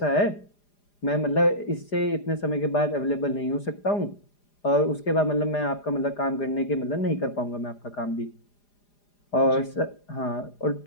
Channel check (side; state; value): right; late; 4.9 ms